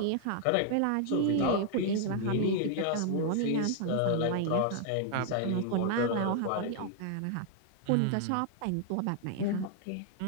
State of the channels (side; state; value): both; different; correlation -0.01